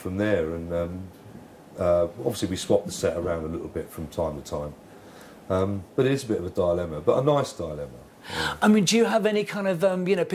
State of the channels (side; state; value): both; identical; correlation 1.00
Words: there. And obviously we swapped the set around a little bit from time to time, but it is a bit of a dilemma, but a nice dilemma. Yeah. I mean, do you have any kind of you know,